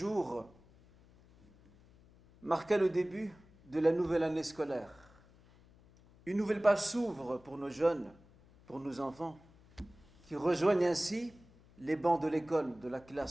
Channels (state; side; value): noise; left; hum, 26 dB below the sound